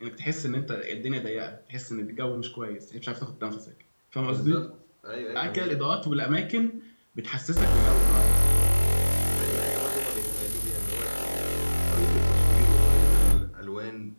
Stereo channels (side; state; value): both; inverted; correlation -1.00